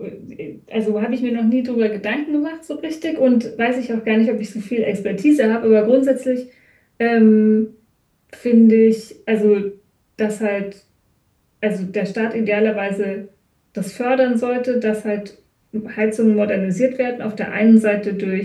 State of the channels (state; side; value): identical; both; correlation 1.00